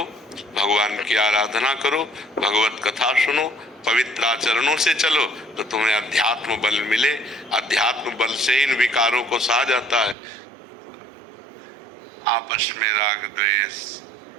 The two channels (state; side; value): drops out; left; at 10.2 s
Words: भगवान की आराधना करो, भगवत कथा सुनो, पवित्र आचरणों से चलो तो तुम्हें अध्यात्म बल मिले। अध्यात्म बल से इन विकारों को सहा जाता है। आपस में राग द्वेष,